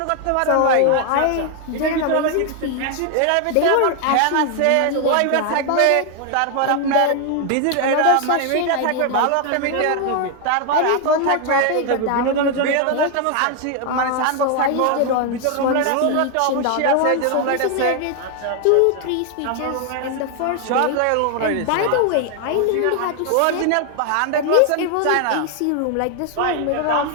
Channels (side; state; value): both; different; correlation 0.00